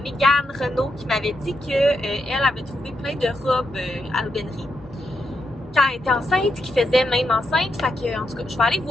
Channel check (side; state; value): left; noise; hum, 23 dB below the sound